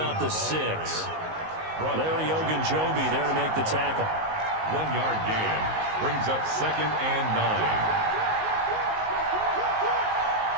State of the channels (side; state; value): left; late; 19 ms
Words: the 6. Larry Ogunjobi there to make the tackle. 1-yard gain brings up second and 9.